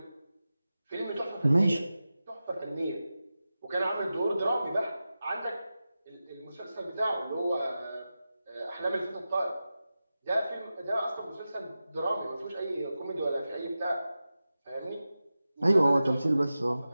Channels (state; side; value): inverted; both; correlation -0.93